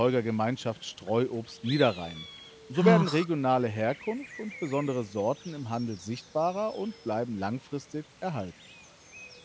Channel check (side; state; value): both; identical; correlation 1.00